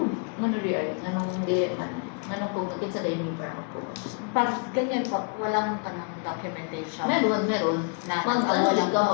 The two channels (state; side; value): quieter; right; 39.8 dB